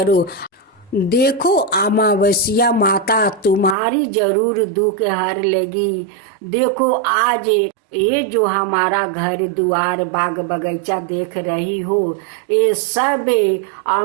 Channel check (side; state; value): left; drops out; at 3.8 s